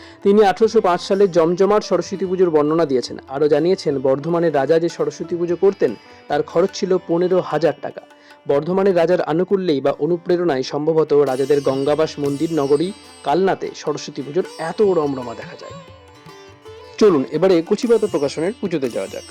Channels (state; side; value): identical; both; correlation 1.00